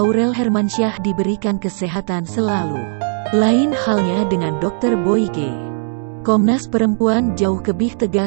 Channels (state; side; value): silent; left; digital silence